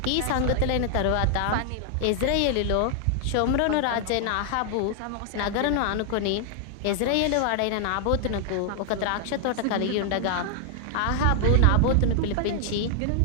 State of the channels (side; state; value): both; different; correlation 0.00